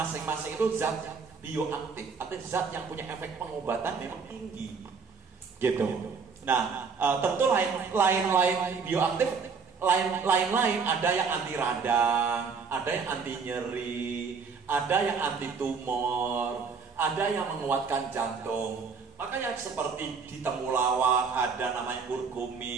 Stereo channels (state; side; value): quieter; left; 5.3 dB